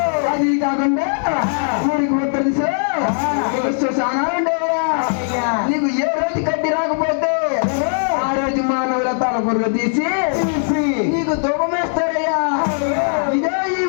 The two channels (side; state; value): right; silent; 61 dB below the other